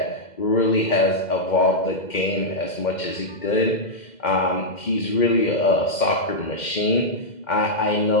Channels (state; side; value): late; right; 2.1 ms